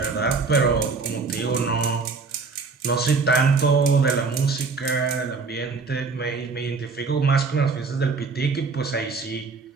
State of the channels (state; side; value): quieter; left; 4.4 dB